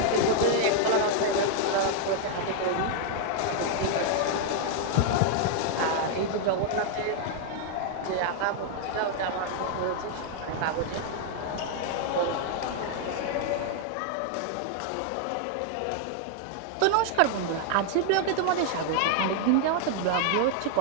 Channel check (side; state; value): both; different; correlation 0.00